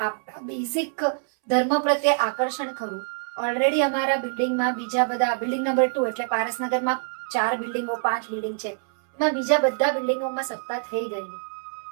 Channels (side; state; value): left; silent; 62 dB below the other